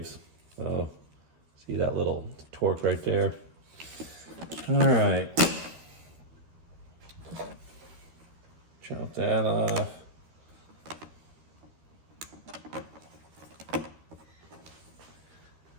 So see that little torque right there? All right. Chop that off.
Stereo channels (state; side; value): late; left; 13 ms